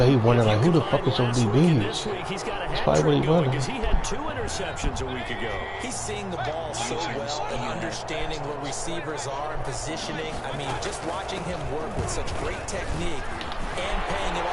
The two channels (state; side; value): identical; both; correlation 1.00